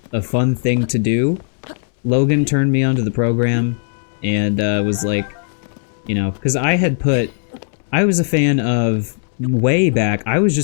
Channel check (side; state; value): right; silent; digital silence